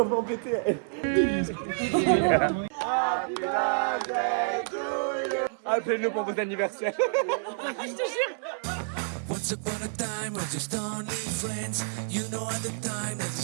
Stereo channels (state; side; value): silent; left; 59 dB below the other